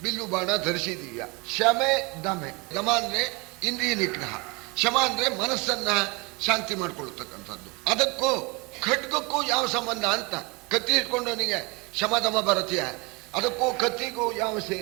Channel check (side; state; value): left; quieter; 27.4 dB